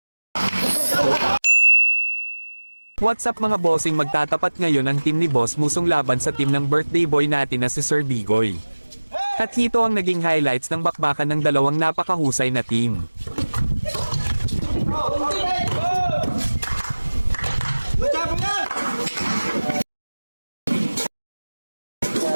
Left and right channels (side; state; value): both; inverted; correlation -1.00